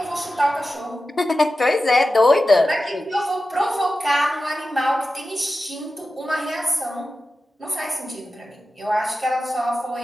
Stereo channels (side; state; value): both; normal; correlation 0.93